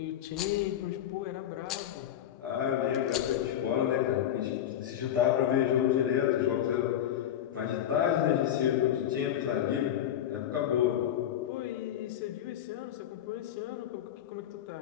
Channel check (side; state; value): right; quieter; 10.8 dB